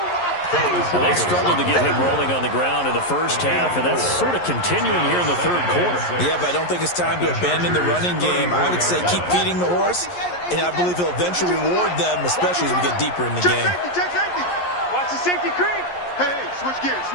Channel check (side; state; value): right; late; 11 ms